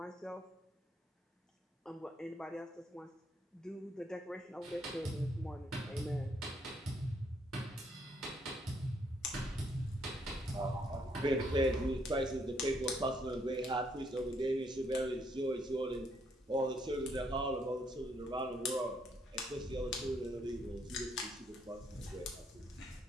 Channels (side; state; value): both; normal; correlation 0.71